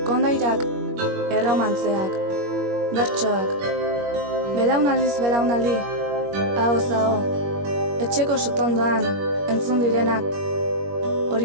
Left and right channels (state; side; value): late; left; 21 ms